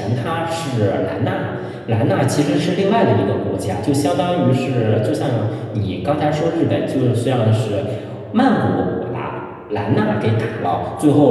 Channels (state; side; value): identical; both; correlation 1.00